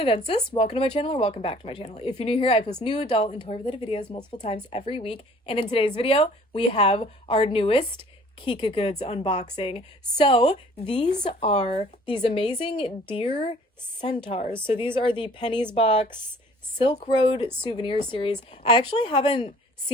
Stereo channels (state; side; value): normal; both; correlation 0.53